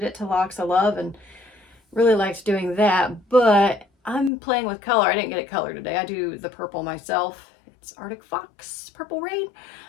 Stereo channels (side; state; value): right; drops out; at 4.3 s